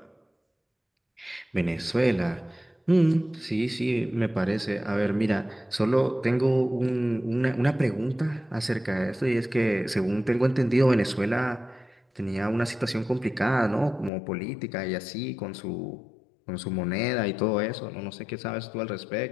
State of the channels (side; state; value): right; drops out; at 14.1 s